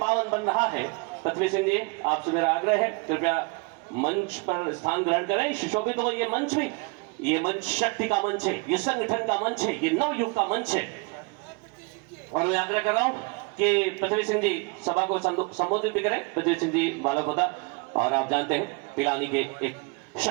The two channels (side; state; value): left; quieter; 29.9 dB